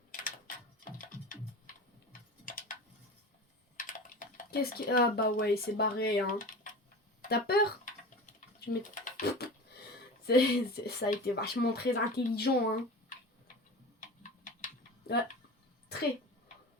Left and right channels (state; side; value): normal; both; correlation 0.33